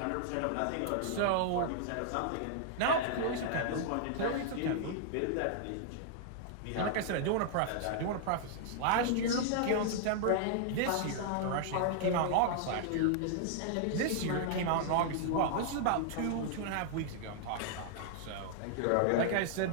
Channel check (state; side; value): different; both; correlation -0.01